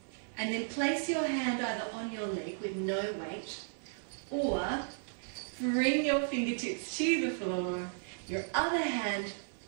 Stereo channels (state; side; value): silent; left; 55 dB below the other